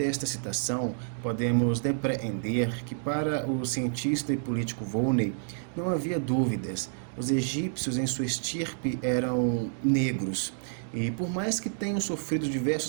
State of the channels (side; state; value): left; silent; digital silence